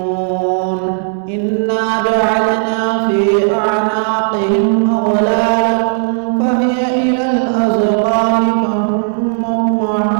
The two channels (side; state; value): left; silent; digital silence